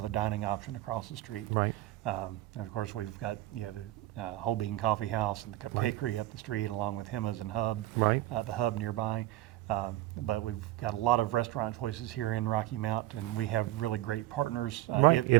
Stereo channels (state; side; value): quieter; left; 16.3 dB